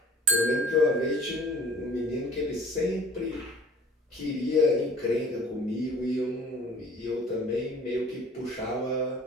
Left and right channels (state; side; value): normal; both; correlation 0.50